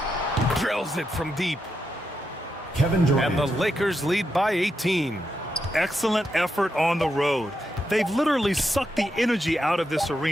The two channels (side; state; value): both; normal; correlation 0.84